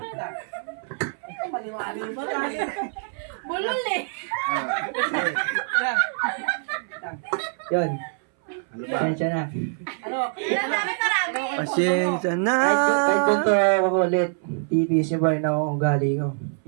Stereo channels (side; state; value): left; silent; 62 dB below the other